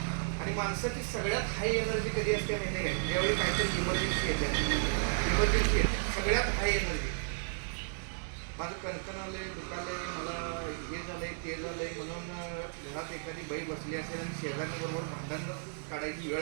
आणि माणसाची सगळ्यात हाय एनर्जी कधी असते माहिती आहे, ज्यावेळी काहीतरी इमर्जन्सी येते. इमर्जन्सी येते सगळ्यात हाय एनर्जी. माझं कणकण आलंय, दुखालंय, मला हे झालंय ते झालंय म्हणून घरात एखादी बाई बसली असेल आणि शेजाऱ्यांबरोबर भांडण काढायची वेळ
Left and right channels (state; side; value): silent; left; digital silence